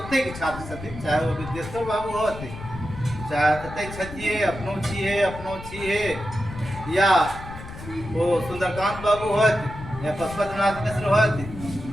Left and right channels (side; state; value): left; noise; rumble, 12 dB below the sound